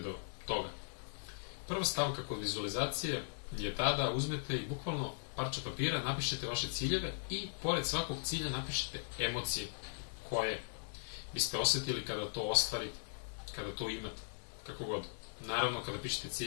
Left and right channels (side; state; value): right; silent; digital silence